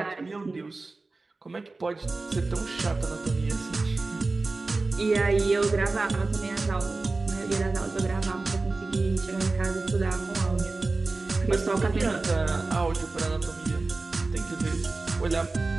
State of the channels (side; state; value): left; quieter; 3.5 dB